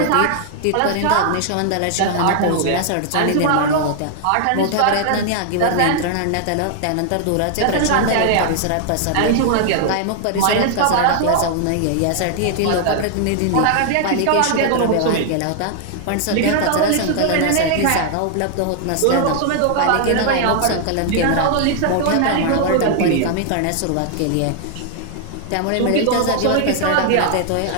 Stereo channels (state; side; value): different; both; correlation 0.00